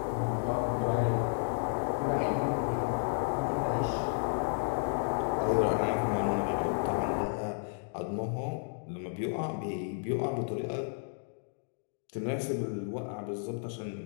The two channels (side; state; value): right; silent; digital silence